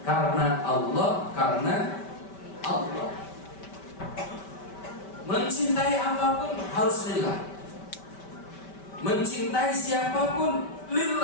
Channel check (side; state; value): right; late; 5.2 ms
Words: Karena Allah, karena Allah. Mencintai apapun harus lillah. Mencintai siapapun